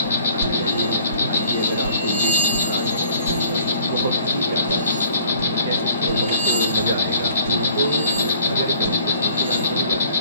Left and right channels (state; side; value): inverted; both; correlation -0.52